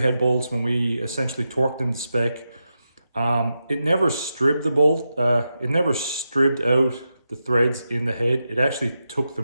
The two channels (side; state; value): both; inverted; correlation -0.89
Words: head bolts, when we essentially torqued them to spec, it never stripped the bolt, it never stripped out the threads in the head. It actually took